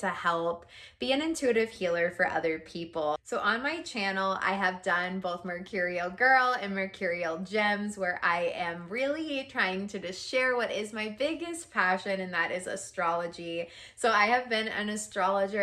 help be an intuitive healer for other people. So on my channel, I have done both Mercurial Girl and Mercurial Gems, where I am really trying to just share what is my biggest passion, and that is astrology. So I have been an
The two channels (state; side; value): identical; both; correlation 1.00